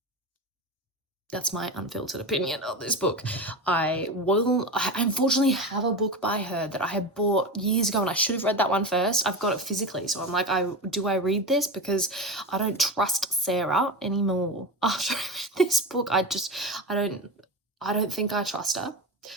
That's my unfiltered opinion of this book. I unfortunately have a book by her that I had bought years ago, and I should have read that one first. I've got it physically, so I'm like, do I read this? Because I don't trust Sarah anymore. After I read this book, I don't think I trust her.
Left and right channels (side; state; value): both; normal; correlation 0.22